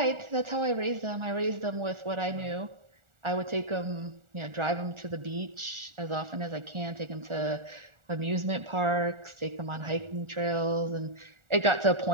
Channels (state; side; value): late; left; 1.4 ms